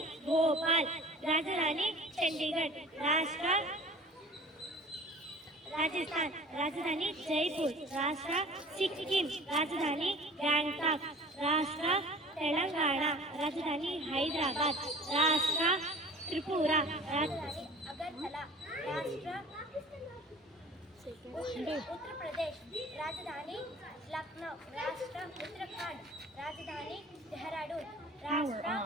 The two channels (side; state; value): both; normal; correlation 0.44